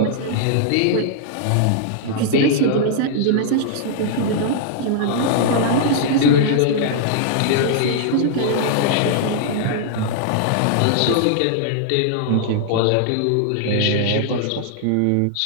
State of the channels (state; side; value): different; both; correlation -0.01